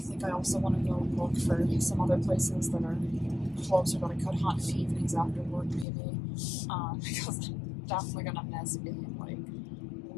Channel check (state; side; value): drops out; right; at 5.9 s